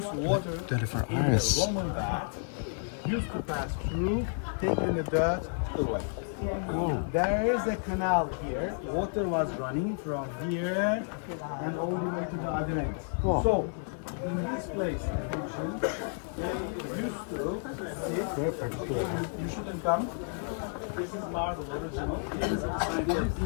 water 24 in hours. the Roman bath used to pass through, taking the dirt away. There is a canal here. Water was running from here and all the way to the other end. So, in this place, attention, they used to sit. Okay, you shouldn't come. This is marble original.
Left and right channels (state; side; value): silent; right; 57 dB below the other